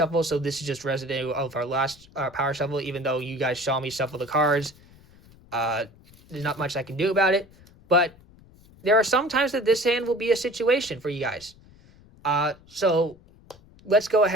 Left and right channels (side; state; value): left; noise; rumble, 26 dB below the sound